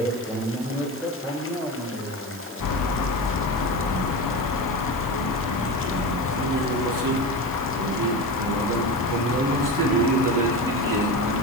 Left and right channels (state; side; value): noise; right; hiss, 17 dB below the sound